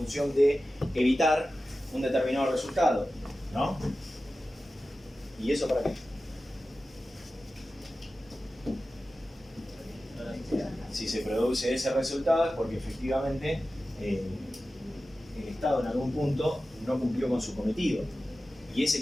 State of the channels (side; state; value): both; normal; correlation 0.94